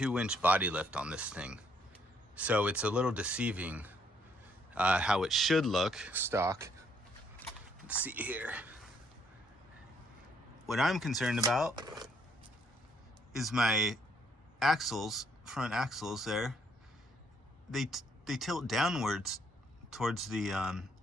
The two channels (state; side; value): normal; both; correlation 0.68